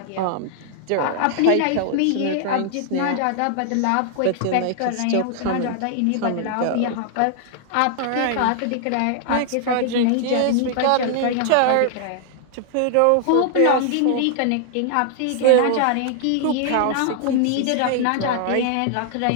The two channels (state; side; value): different; both; correlation 0.00